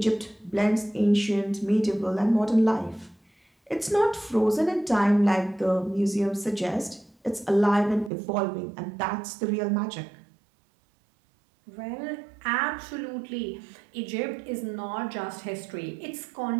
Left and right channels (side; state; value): left; drops out; at 8.1 s